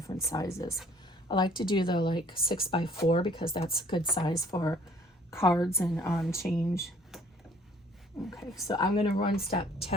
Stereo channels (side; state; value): both; normal; correlation 0.57